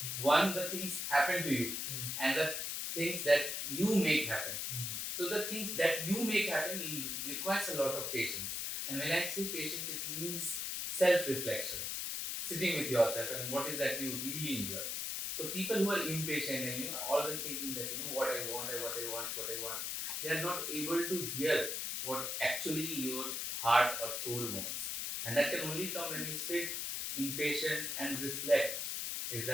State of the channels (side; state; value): left; noise; hiss, 2 dB below the sound